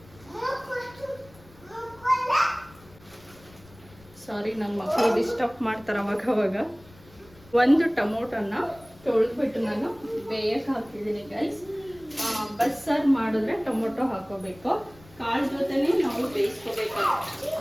ಸಾರಿ, ನನ್ನ ಮಕ್ಕಳು ಡಿಸ್ಟರ್ಬ್ ಮಾಡ್ತಾರೆ ಅವಾಗ. ಒಂದು ಟೊಮೊಟೊನ ತೊಳೆದ್ಬಿಟ್ಟು ನಾನು ಬೇಯಕ್ಕೆ ಹಾಕಿದ್ದೀನಿ ಗೈಸ್. ಬಸ್ಸಾರು ಮಾಡಿದ್ರೆ ಟೊಮೊಟೊ ಹಾಕೋಬೇಕು. ಕಾಳು ಜೊತೆನೇ ನಾವು ಬೇಯಿಸ್ಕೋಬೇಕು.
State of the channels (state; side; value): noise; left; rumble, 24 dB below the sound